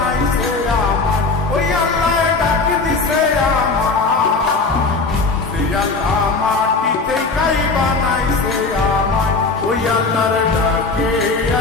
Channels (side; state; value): right; quieter; 4.0 dB